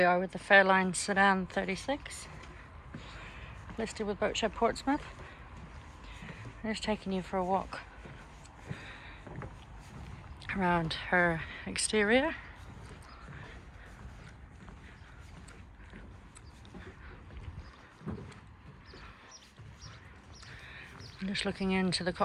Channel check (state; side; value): identical; both; correlation 1.00